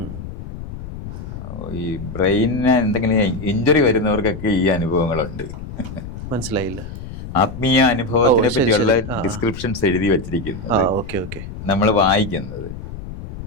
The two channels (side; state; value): left; noise; rumble, 10 dB below the sound